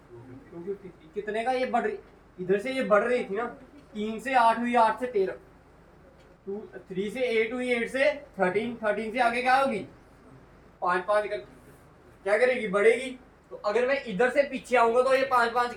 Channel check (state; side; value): identical; both; correlation 1.00